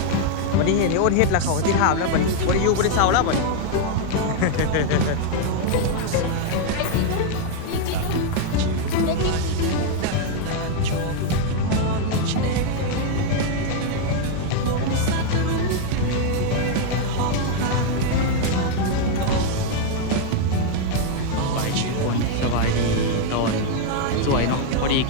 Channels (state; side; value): different; both; correlation 0.00